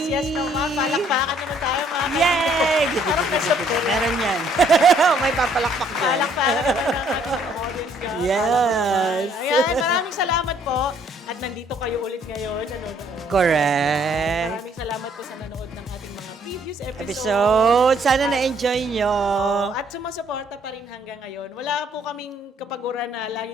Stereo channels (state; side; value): normal; both; correlation 0.64